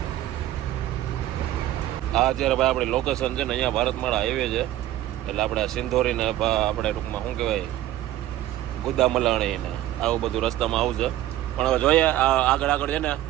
આ અત્યારે ભાઈ આપણી લોકેશન છે ને અહીંયા ભારતમાળા હાઈવે છે એટલે આપણે સિંધોરીને આપણે ટૂંકમાં શું કહેવાય ગુદામલાણી ને આવું બધું રસ્તામાં આવું છે. પણ હવે જોઈએ આગળ છે ને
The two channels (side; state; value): left; quieter; 13.7 dB